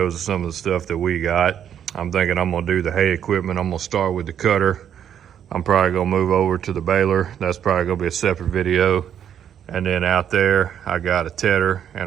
of some of the stuff that we got. I'm thinking I'm gonna do the hay equipment. I'm gonna start with the cutter. I'm probably gonna move over to the baler. That's probably gonna be a separate video. And then out there, I got a tedder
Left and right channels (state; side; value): quieter; left; 9.3 dB